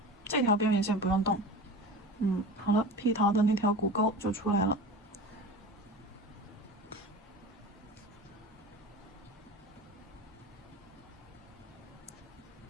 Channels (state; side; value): normal; both; correlation 0.34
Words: 这条边缘线不用动，好了，屁桃的那条骨沟就出来了。